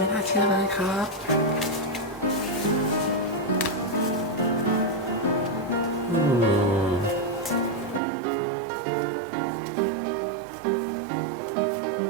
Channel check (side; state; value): left; drops out; at 8.0 s